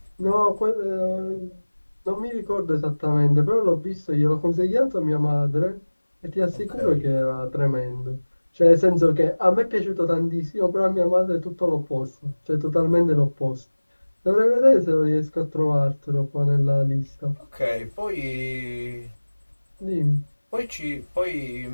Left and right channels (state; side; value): inverted; both; correlation -1.00